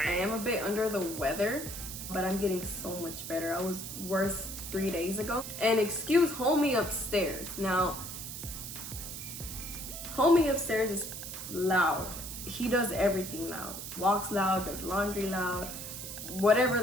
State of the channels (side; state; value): right; noise; hiss, 8 dB below the sound